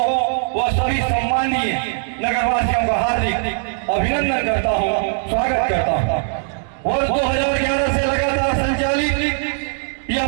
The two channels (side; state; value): left; silent; digital silence